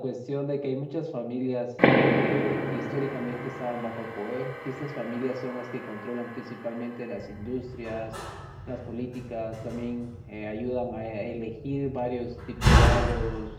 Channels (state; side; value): identical; both; correlation 1.00